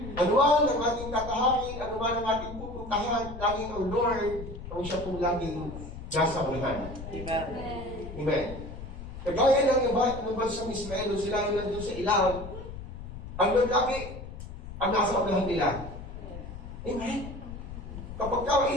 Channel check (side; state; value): left; noise; rumble, 11 dB below the sound